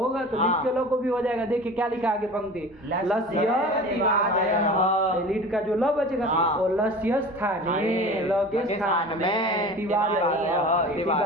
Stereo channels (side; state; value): both; normal; correlation 0.37